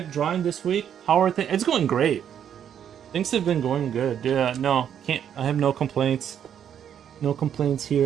drawing this week. How are things? It's going great. Things have been going good. Yeah, no, can't. I have no complaints. No complaints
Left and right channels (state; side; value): quieter; left; 9.1 dB